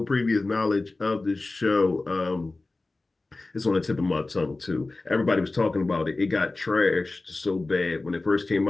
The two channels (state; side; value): quieter; right; 3.2 dB